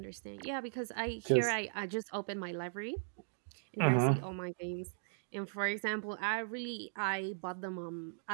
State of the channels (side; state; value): left; silent; digital silence